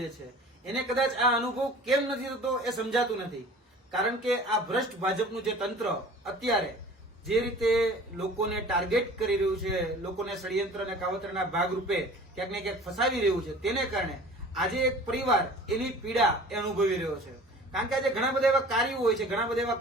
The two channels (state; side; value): normal; both; correlation 0.44